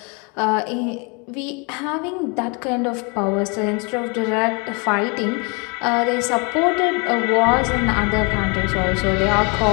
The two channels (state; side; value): quieter; right; 31.9 dB